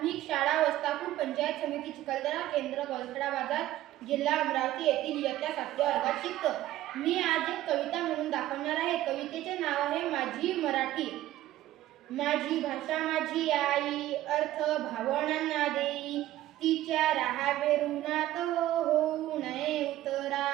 शाळा वस्तापूर पंचायत समिती चिखलदरा केंद्र गलसडा बाजार जिल्हा अमरावती येथील इयत्ता 7व्या वर्गात शिकतो. मी आज एक कविता म्हणून दाखवणार आहे. कवितेचे नाव आहे माझी मराठी. माझी भाषा माझी आई, अर्थ भावनांना देई, तिच्या राहावे ऋणात होऊ नये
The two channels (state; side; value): quieter; left; 14.5 dB